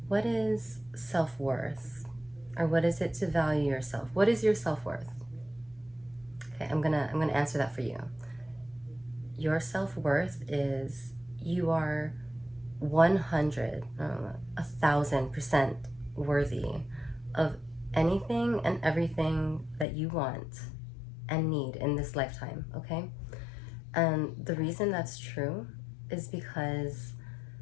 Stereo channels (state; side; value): drops out; right; at 19.9 s